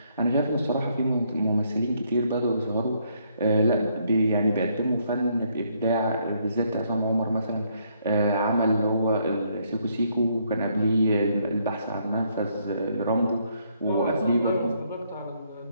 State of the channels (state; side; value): inverted; both; correlation -0.71